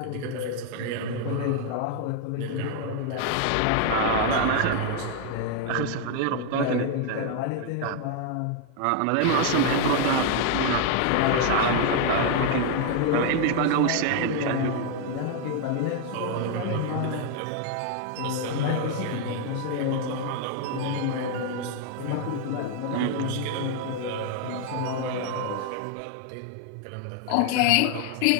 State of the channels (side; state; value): both; different; correlation 0.00